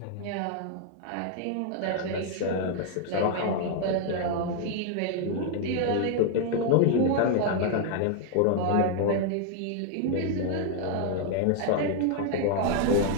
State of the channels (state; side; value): different; both; correlation 0.00